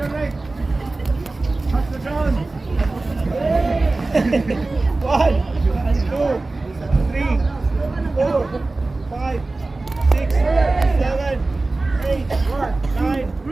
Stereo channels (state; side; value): quieter; left; 3.2 dB